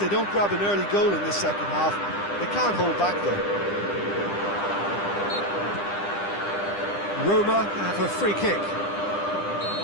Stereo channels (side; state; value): right; late; 10 ms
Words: don't grab an early goal in this second half, they can't hold back though. Roma have a free kick.